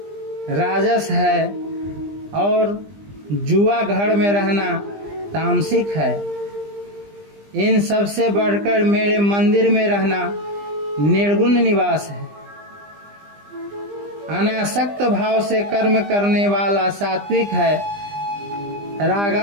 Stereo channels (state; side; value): late; left; 20 ms